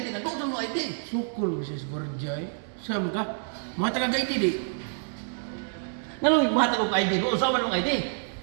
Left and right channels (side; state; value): left; silent; 59 dB below the other